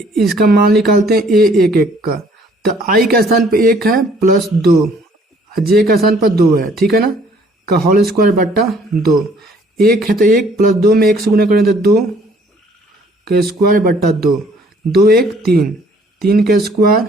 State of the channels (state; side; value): normal; both; correlation 0.59